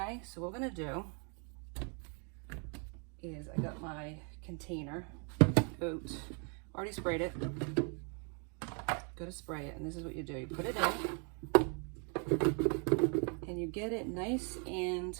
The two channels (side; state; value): left; quieter; 38.4 dB